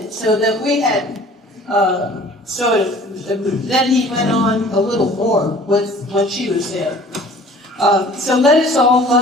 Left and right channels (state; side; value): normal; both; correlation 0.49